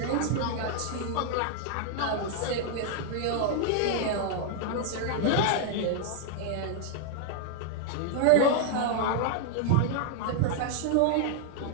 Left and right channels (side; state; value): both; different; correlation -0.01